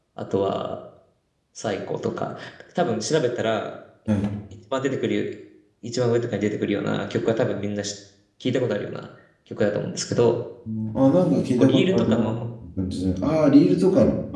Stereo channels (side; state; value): both; identical; correlation 1.00